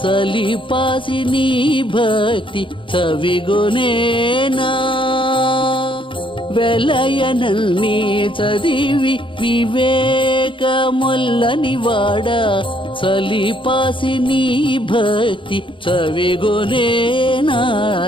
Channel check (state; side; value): late; right; 0.25 ms